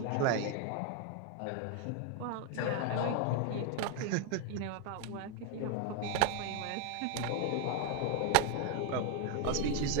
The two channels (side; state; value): both; different; correlation 0.01